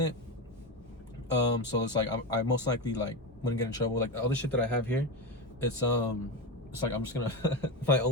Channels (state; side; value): normal; both; correlation 0.17